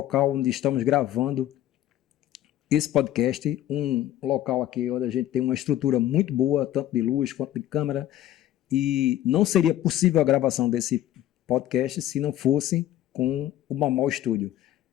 onde estamos gravando esse podcast, um local aqui onde a gente tem uma estrutura muito boa, tanto de luz quanto de câmera, e não seria possível a gravação desse podcast se não fosse com o Mau Estúdio.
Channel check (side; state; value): right; quieter; 12.8 dB